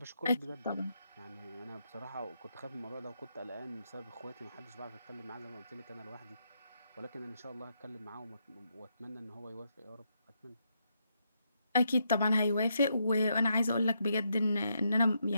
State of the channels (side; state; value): both; inverted; correlation -0.79